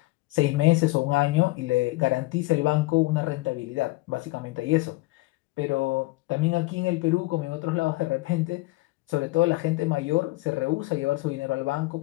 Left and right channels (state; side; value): quieter; right; 21.6 dB